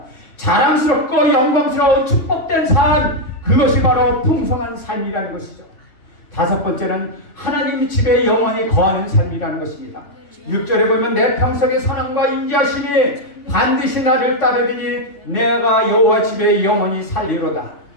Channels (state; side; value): late; right; 3.2 ms